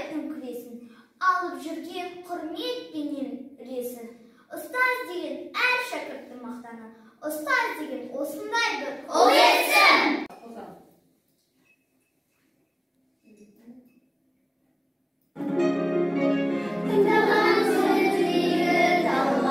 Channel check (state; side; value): identical; both; correlation 1.00